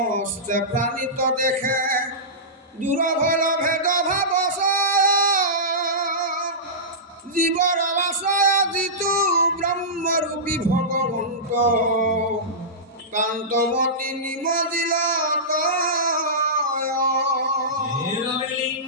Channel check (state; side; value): normal; both; correlation -0.17